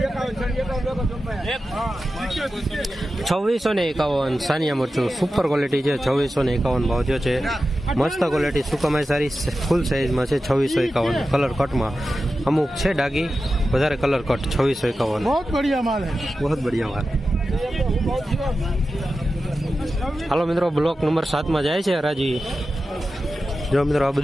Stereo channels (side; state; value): both; normal; correlation 0.92